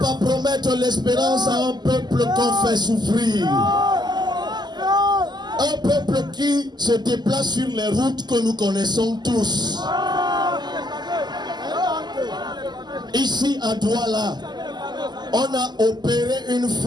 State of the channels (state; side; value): late; left; 0.21 ms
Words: promettre l'espérance à un peuple qu'on fait souffrir. Un peuple qui se déplace sur les routes que nous connaissons tous. Ici à Douala, on a opéré une